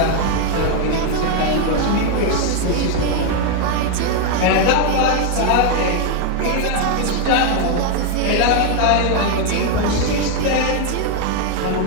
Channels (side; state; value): both; different; correlation 0.01